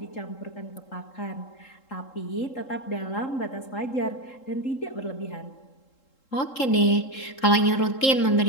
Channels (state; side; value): late; right; 3.7 ms